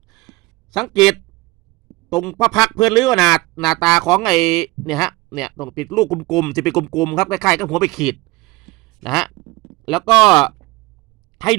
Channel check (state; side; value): quieter; left; 21.6 dB